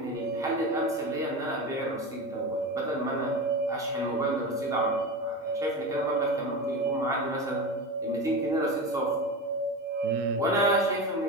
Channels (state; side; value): normal; both; correlation 0.24